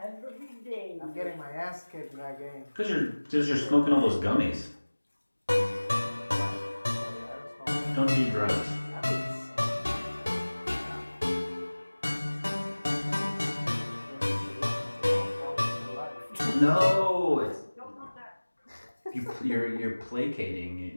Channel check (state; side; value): inverted; both; correlation -1.00